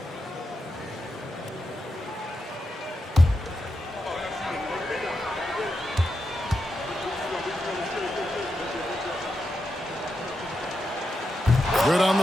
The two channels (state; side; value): normal; both; correlation 0.86